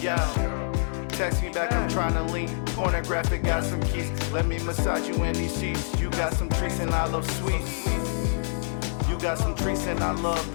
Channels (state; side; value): silent; right; digital silence